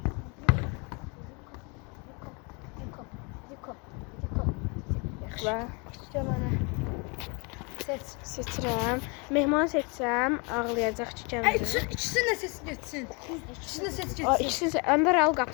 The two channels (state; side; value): quieter; right; 31.7 dB